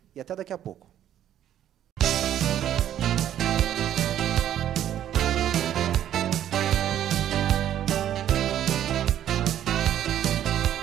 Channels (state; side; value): quieter; left; 11.1 dB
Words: e até daqui a pouco.